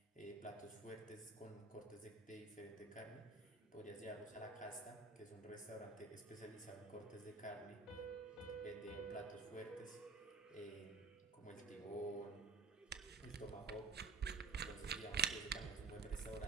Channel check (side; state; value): left; quieter; 4.1 dB